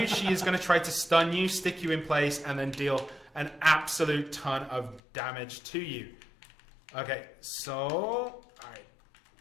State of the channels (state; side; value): drops out; right; at 5.0 s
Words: She is going to try to stun you, stick you in place, and then deal an absolute ton of damage to you. Okay, so... Alright.